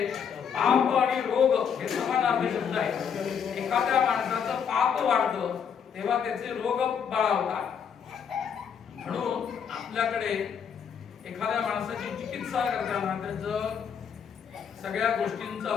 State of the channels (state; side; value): quieter; right; 7.3 dB